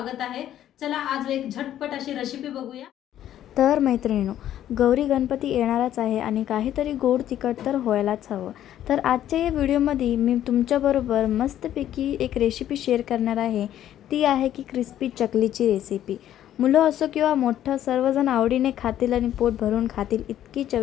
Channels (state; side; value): quieter; right; 11.6 dB